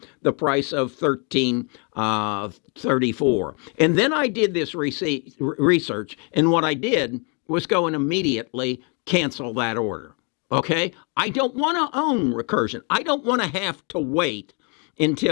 the price of $13.34. And then I did this research, and what I did was go and immediately cancel that order. Okay? I don't want to own Recursion. I don't want to have to wait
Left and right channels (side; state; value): right; quieter; 35.5 dB